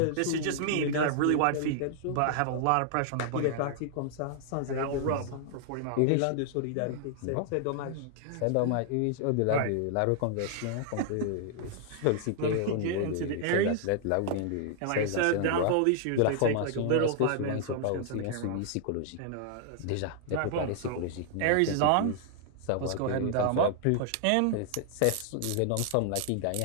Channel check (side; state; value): both; different; correlation -0.01